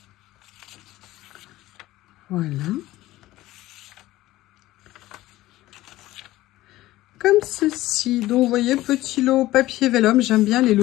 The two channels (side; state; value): right; quieter; 16.6 dB